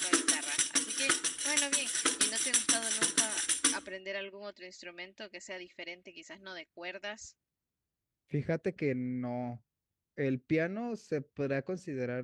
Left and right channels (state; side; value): identical; both; correlation 1.00